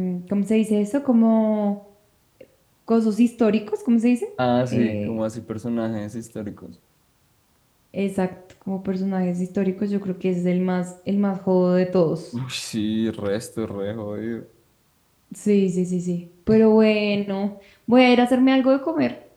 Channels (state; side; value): identical; both; correlation 1.00